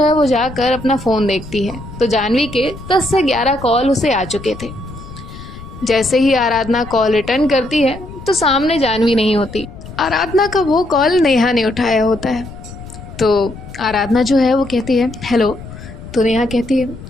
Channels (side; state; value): left; noise; rumble, 14 dB below the sound